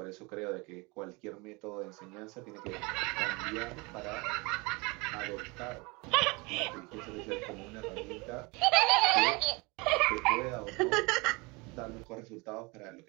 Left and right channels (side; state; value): left; quieter; 26.8 dB